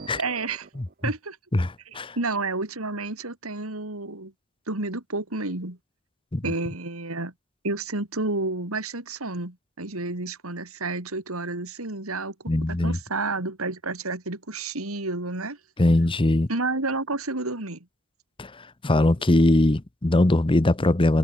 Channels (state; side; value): normal; both; correlation 0.63